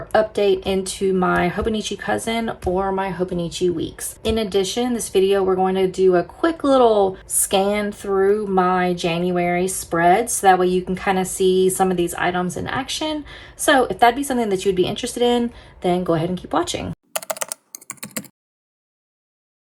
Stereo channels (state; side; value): identical; both; correlation 1.00